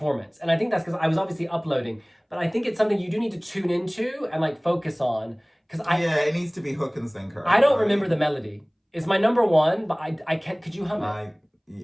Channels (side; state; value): both; identical; correlation 1.00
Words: And I think that's because I was obviously uploading, but I think it's something you do need to tune into and like focus on. Yeah, it needs to be hook and sinker. I don't remember the melody. It's my number one, but I can't. Could you hum